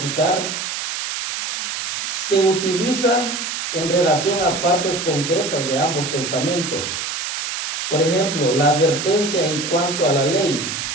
se utiliza en relación a partes concretas de ambos testamentos. Por ejemplo, la advertencia en cuanto a la ley.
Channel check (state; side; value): noise; right; hiss, 4 dB below the sound